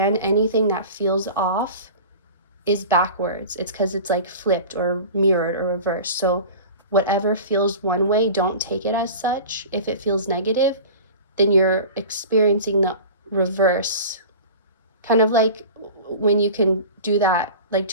anything that feels off is backwards. It's because it's like flipped or mirrored or reversed. So whatever feels one way, don't take it as such. If it feels negative, then you're experiencing the reverse. Kind of like when you can do that, like,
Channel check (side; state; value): both; inverted; correlation -0.37